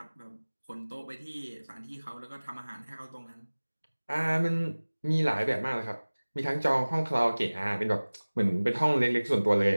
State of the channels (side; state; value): both; inverted; correlation -1.00